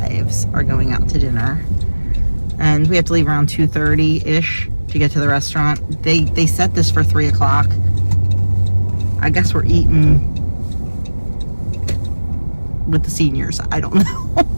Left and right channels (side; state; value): both; inverted; correlation -1.00